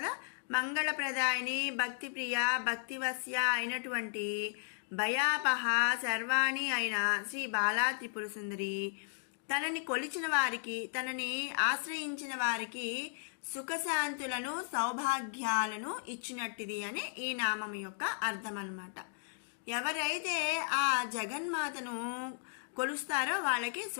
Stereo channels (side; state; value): right; silent; digital silence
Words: మంగళప్రదాయిని, భక్తిప్రియ, భక్తివశ్య అయినటువంటి భయాపహ శర్వాణి అయిన శ్రీ బాలా త్రిపుర సుందరి తనని కొలిచిన వారికి, తనని ఆశ్రయించిన వారికి సుఖశాంతులను సౌభాగ్యాలను ఇచ్చినట్టిది అని ఈ నామం యొక్క అర్థం అన్నమాట. ఎవరైతే ఆ జగన్మాతను కొలుస్తారో వాళ్ళకి